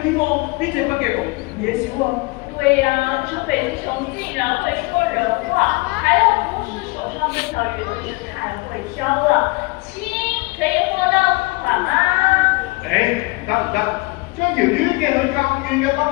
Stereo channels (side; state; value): right; quieter; 25.2 dB